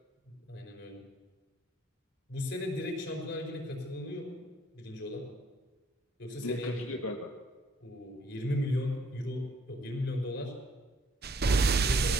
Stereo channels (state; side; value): normal; both; correlation 0.64